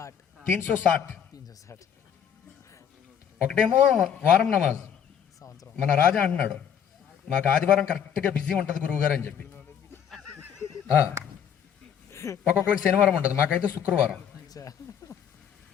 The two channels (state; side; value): quieter; right; 8.4 dB